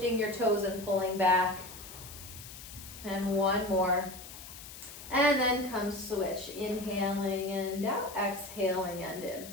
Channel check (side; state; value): left; noise; hiss, 14 dB below the sound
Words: your toes and pulling back. And 1 more. And then come switch. Inhaling and out, exhaling and in.